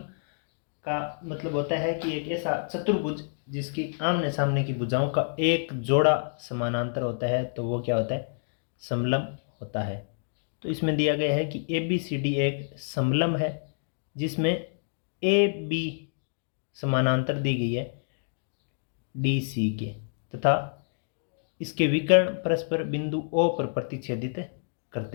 का मतलब होता है कि एक ऐसा चतुर्भुज जिसकी आमने सामने की भुजाओं का एक जोड़ा समानांतर होता है, तो वो क्या होता है? समलंब होता है। तो इसमें दिया गया है कि ए बी सी डी एक समलंब है जिसमें ए बी समानांतर दी गई है डी सी के, तथा इसके विकर्ण परस्पर बिंदु ओ पर प्रतिच्छेदित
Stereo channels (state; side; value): silent; right; digital silence